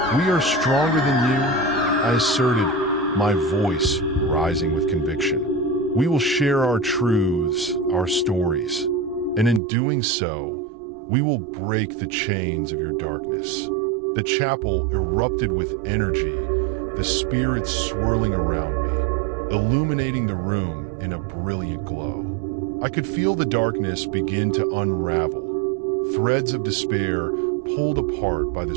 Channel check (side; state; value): left; drops out; at 9.6 s